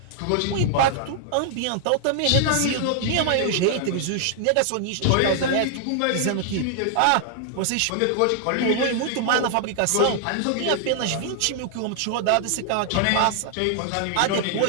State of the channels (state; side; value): different; both; correlation 0.00